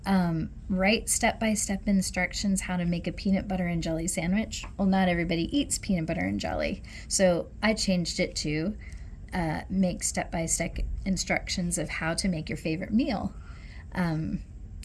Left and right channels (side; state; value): both; identical; correlation 1.00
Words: write step-by-step instructions how to make a peanut butter and jelly sandwich. Well, not everybody eats peanut butter and jelly, so I changed it to make step-by-step instructions of how to make your favorite meal.